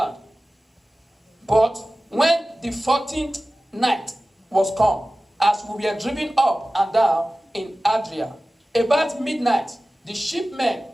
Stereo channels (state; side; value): normal; both; correlation 0.96